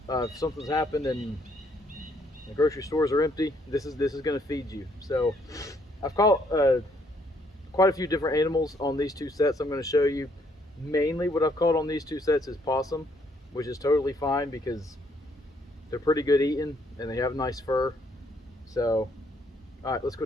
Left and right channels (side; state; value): both; normal; correlation 0.69